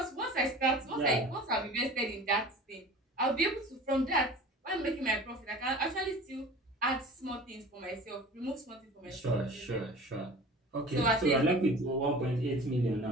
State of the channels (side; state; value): both; normal; correlation 0.40